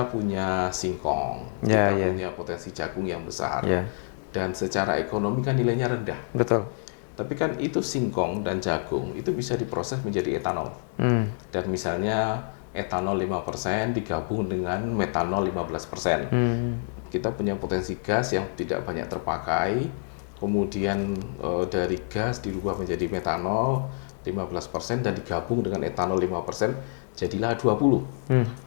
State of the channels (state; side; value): silent; right; digital silence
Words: punya singkong, kita punya potensi jagung yang besar, dan secara ekonomi kan nilainya rendah. Betul. Tapi kan itu singkong dan jagung itu bisa diproses menjadi etanol. Dan misalnya etanol 5% digabung dengan metanol 15%. Kita punya potensi gas yang tidak banyak terpakai, kemudian dari gas dirubah menjadi metanol 15% dan digabung dengan etanol 5%, jadilah 20.